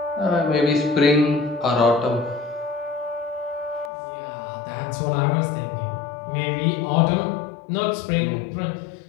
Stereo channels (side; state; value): right; drops out; at 3.9 s